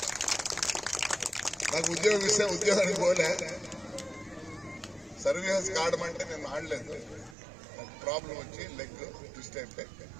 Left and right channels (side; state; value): left; drops out; at 7.4 s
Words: నాకు ఉద్యోగం ఇస్తే ఉద్యోగానికి పోలే, సర్వీసెస్ ఆడమంటే నేను ఆడలేదు. నాకు ప్రాబ్లం వచ్చి లెగ్ ట్విస్ట్ అయిపోయి